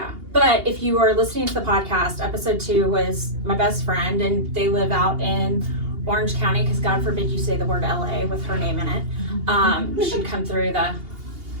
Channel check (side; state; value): left; late; 2.8 ms